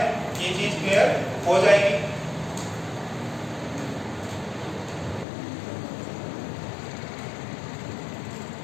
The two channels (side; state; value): right; drops out; at 5.2 s